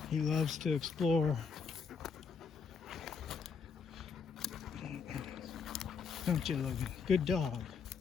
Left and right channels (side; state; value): right; quieter; 5.6 dB